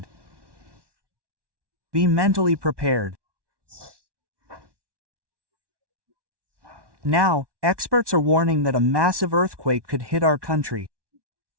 Be mentally prepared. Now, experts are warning that a massive earthquake could hit our country.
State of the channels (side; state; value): left; late; 1.2 ms